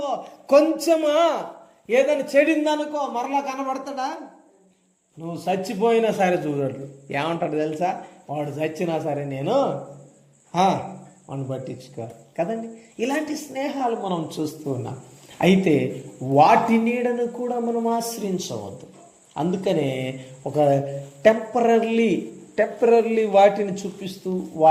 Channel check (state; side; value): identical; both; correlation 1.00